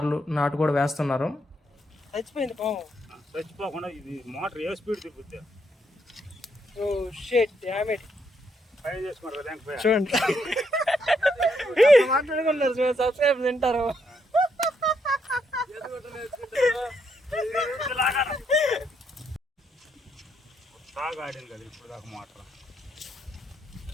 నాటు కూడా వేస్తున్నారు. చచ్చిపోయింది పాము. చచ్చిపోకుండా ఇది మోటార్ ఏ స్పీడ్ తిప్పుద్ది. Oh shit damn it. పై చేసుకున్నారు లేకపోయా చూడండి మాట్లాడుకున్నారు, సబ్స్క్రైబ్ తింటారు. బాగా ఆడింది కదా ఇప్పుడు దాకా మోటార్.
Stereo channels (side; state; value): both; normal; correlation 0.76